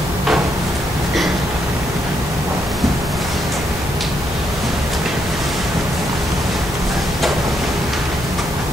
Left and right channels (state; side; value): noise; left; hum, 11 dB below the sound